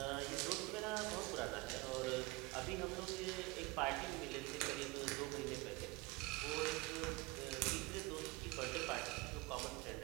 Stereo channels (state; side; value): quieter; left; 23.0 dB